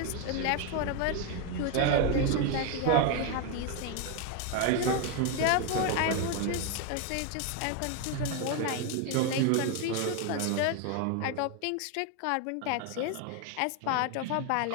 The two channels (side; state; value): both; different; correlation 0.01